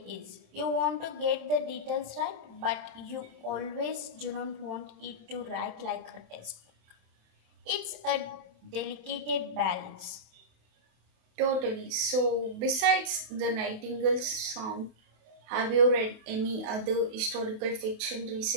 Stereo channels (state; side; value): late; left; 28 ms